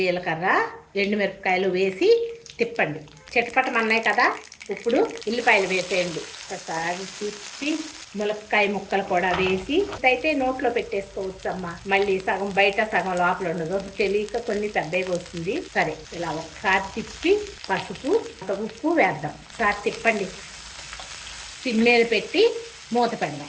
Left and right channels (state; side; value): identical; both; correlation 1.00